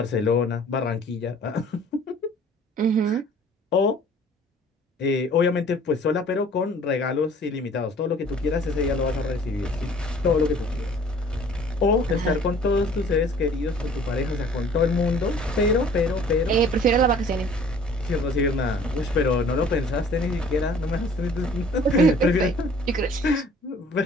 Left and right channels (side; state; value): both; normal; correlation 0.52